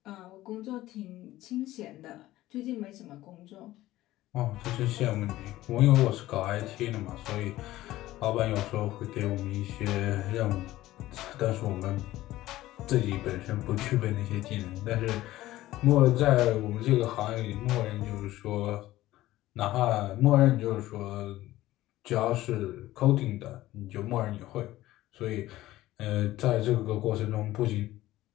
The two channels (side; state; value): right; quieter; 15.9 dB